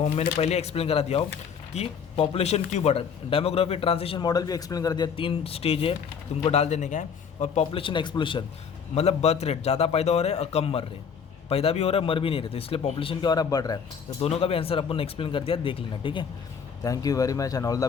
मैंने पहले एक्सप्लेन करा दिया हो कि पॉपुलेशन क्यों बढ़ा। डेमोग्राफी ट्रांजिशन मॉडल भी एक्सप्लेन कर दिया, 3 स्टेज है, तुमको डाल देने का है। और पॉपुलेशन एक्सप्लोशन, मतलब बर्थ रेट, ज़्यादा पैदा हो रहे हैं और कम मर रहे हैं, पैदा भी हो रहा है मर भी नहीं रहे, तो इसलिए पॉपुलेशन क्या हो रहा है, बढ़ रहा है। तो दोनों का भी आंसर अपन ने एक्सप्लेन कर दिया, देख लेना, ठीक है। Thank you very much and all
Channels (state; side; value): quieter; right; 6.7 dB